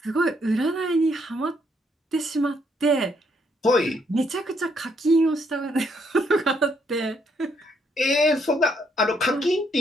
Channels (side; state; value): both; normal; correlation 0.72